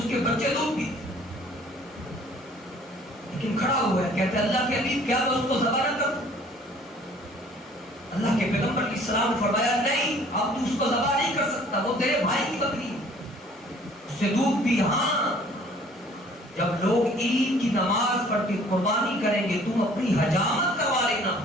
کے بچے دودھ پیتے، لیکن کھڑا ہوا ہے کہتے اللہ کے حبیب کیا میں اس کو ذبح نہ کروں؟ اللہ کے پیغمبر علیہ السلام نے فرمایا نہیں، اب تو اس کو ذبح نہیں کر سکتا، وہ تیرے بھائی کی بکری ہے، اس سے دودھ پی. ہاں جب لوگ عید کی نماز پڑھ کے قربانی کریں گے تم اپنی حجامت کروا لینا،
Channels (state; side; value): normal; both; correlation 0.55